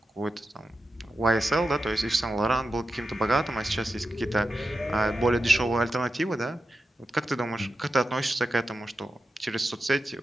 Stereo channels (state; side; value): normal; both; correlation 0.90